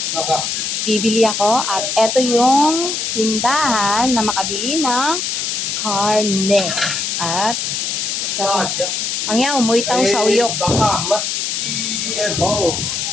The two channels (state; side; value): noise; left; hiss, 2 dB below the sound